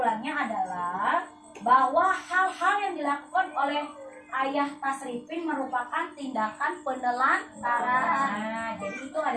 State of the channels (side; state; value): both; identical; correlation 1.00